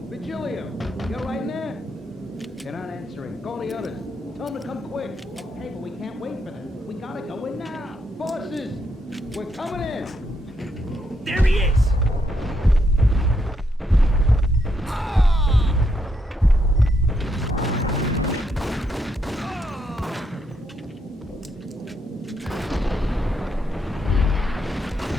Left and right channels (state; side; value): normal; both; correlation 0.78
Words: Virgilio! You all right in there? They're not answering. Call the others. Tell them to come quick. Okay, but we can't wait for them. We gotta go in now. Bosses! We're coming in! There he is!